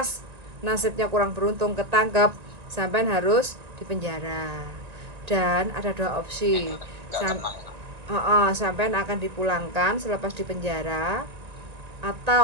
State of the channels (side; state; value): left; late; 1.9 ms